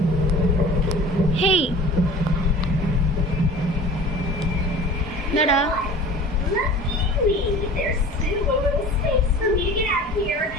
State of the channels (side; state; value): both; normal; correlation 0.41